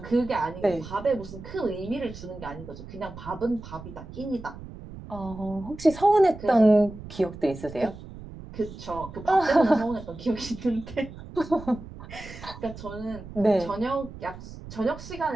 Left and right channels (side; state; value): right; noise; rumble, 14 dB below the sound